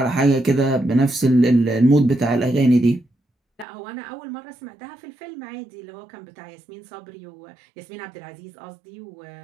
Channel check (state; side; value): drops out; left; at 3.7 s